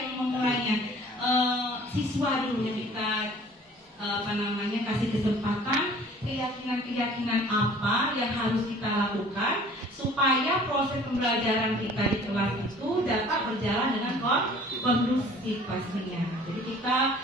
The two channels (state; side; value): normal; both; correlation 0.50